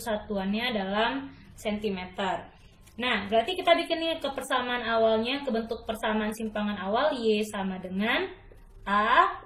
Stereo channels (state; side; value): identical; both; correlation 1.00